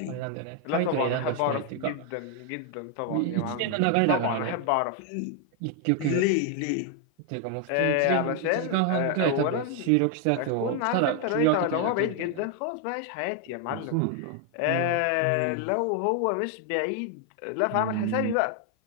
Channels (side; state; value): both; different; correlation 0.00